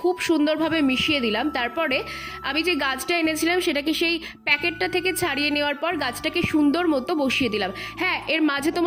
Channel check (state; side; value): identical; both; correlation 1.00